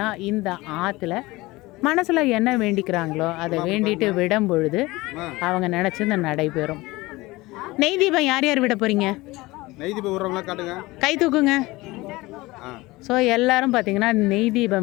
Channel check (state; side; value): quieter; right; 20.7 dB